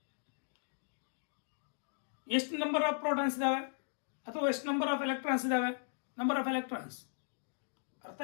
ಎಷ್ಟು ನಂಬರ್ ಆಫ್ ಪ್ರೋಟಾನ್ಸ್ ಇದಾವೆ ಅಥವಾ ಎಷ್ಟು ನಂಬರ್ ಆಫ್ ಎಲೆಕ್ಟ್ರಾನ್ಸ್ ಇದಾವೆ? Number of electrons. ಅರ್ಥ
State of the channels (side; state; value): right; silent; digital silence